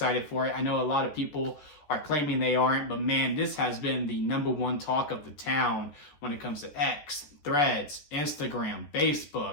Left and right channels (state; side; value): late; right; 14 ms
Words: for it. I know a lot of people are claiming they aren't, but man, this has been the #1 talk of the town when it comes to X, Threads, Instagram,